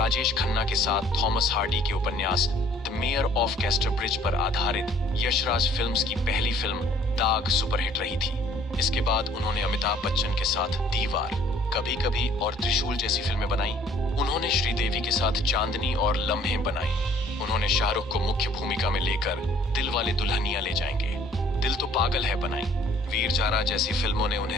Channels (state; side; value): normal; both; correlation 0.57